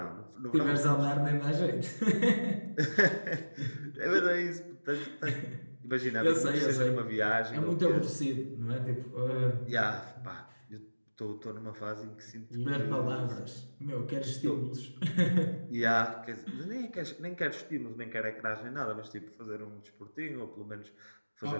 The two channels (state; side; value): inverted; both; correlation -1.00